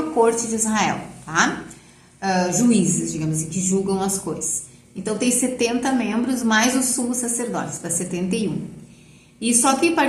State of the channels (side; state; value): both; identical; correlation 1.00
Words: Corte de Israel, tá? Juízes, digamos assim, que julgam as coisas. Então, tem 70 membros, mais os sumos sacerdotes, dá 71. E só quem